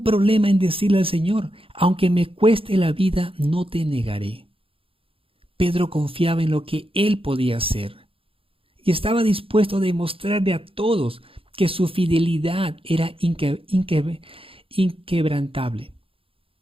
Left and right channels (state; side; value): late; left; 0.27 ms